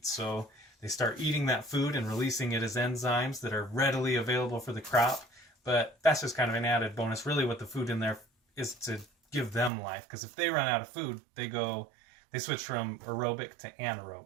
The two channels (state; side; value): drops out; left; at 9.7 s